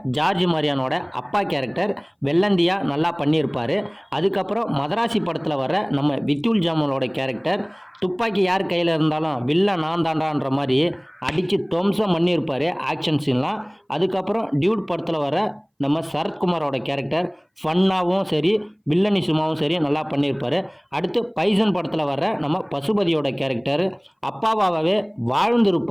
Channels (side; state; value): both; identical; correlation 1.00